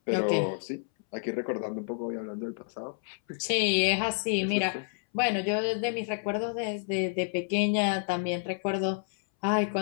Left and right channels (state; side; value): silent; right; 58 dB below the other